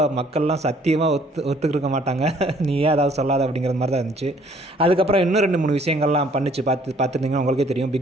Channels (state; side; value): normal; both; correlation 0.60